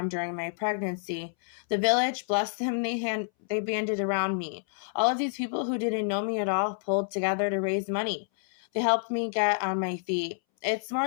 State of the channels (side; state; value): right; silent; 59 dB below the other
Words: during my pregnancy. The village, bless them, they banded around me. All of these people who didn't know me at all pulled together to raise money. They helped me get on my feet. It's